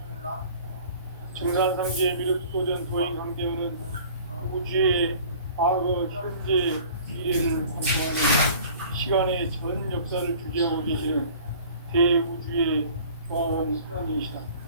증산상제 미륵도전 도인 강대우는 우주의 과거, 현재, 미래를 관통하는 시간의 전 역사를 주재하고 계시는 대우주의 과원 성인이시다.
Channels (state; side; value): inverted; both; correlation -0.48